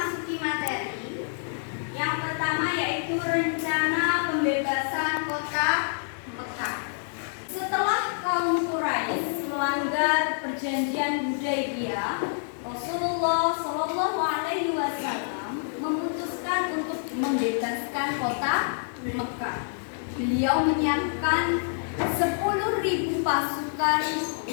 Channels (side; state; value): right; silent; digital silence